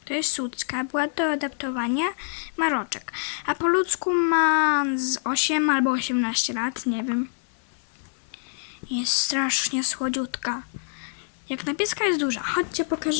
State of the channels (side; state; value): right; silent; digital silence